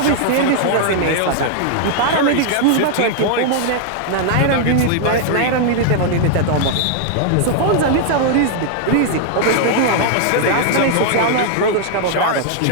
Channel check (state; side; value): different; both; correlation -0.01